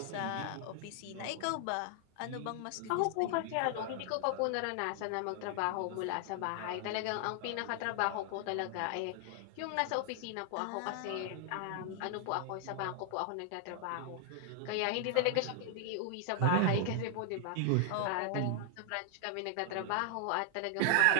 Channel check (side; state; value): both; different; correlation 0.00